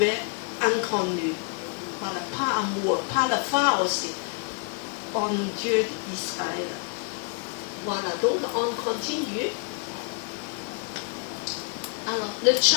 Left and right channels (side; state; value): right; quieter; 38.8 dB